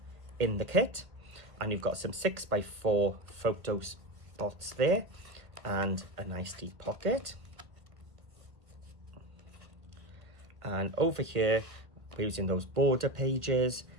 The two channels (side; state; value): left; late; 1.5 ms